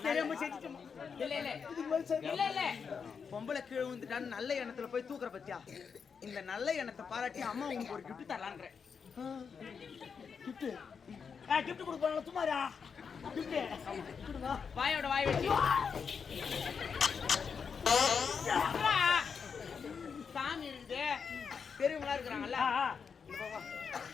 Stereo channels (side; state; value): right; quieter; 6.1 dB